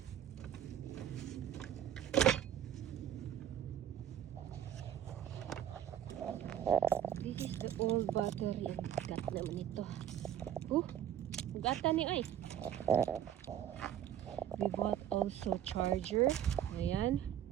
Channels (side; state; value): left; quieter; 10.3 dB